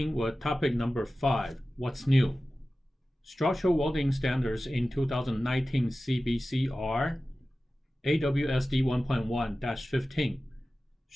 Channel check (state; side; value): normal; both; correlation 0.95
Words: with topic number 5, what's new? Structural welding standards in 2019 CBC are AWSD 1.1-15,